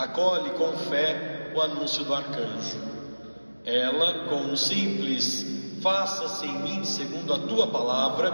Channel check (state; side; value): inverted; both; correlation -1.00